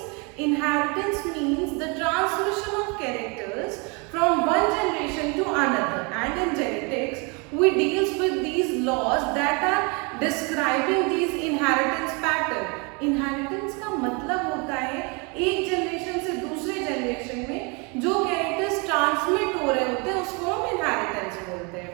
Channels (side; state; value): left; quieter; 31.3 dB